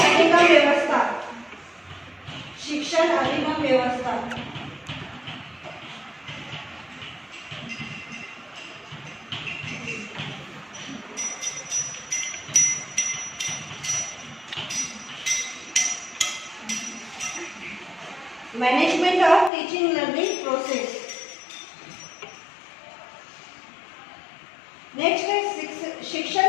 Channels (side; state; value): right; drops out; at 19.5 s